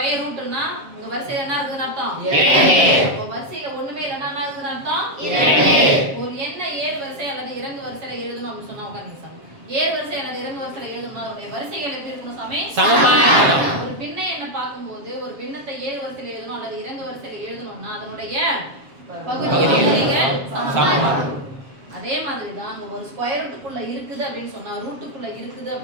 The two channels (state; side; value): late; left; 7.4 ms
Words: ரூட்னா உங்க வரிசையில என்ன இருக்குன்னு அர்த்தம்? 2. அப்ப வரிசையில ஒண்ணுமே இல்லனா என்ன இருக்குன்னு அர்த்தம்? 2. ஒரு எண்ண ஏறு வரிசை அல்லது இறங்கு வரிசையில எழுதணும் அப்படி சொன்னா உட்கார்ந்து சாமி. ஏறு வரிசை அல்லது இறங்கு வரிசையில எழுதணும்னா அதோட வரிசைகள் எப்படி இருக்கணும் சாமி? சமமா இருக்கணும். ஒரு பின்ன எண்ணை பாக்கும்போது ஒரு பின்னத்தை ஏறு வரிசையில எழுதணும் அல்லது இறங்கு வரிசையில எழுதணும்னா அதனுடைய பகுதிகள் சமமா. அதே மாதிரி தான் அங்க ஒரு ஸ்கொயர் ரூட்டுக்குள்ள இருக்குது அப்படின்னு சொன்னா ரூட்டுக்குள்ள இருக்குது